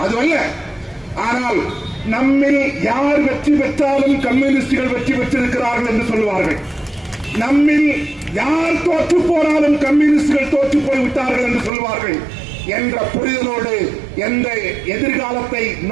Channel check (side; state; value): left; drops out; at 11.7 s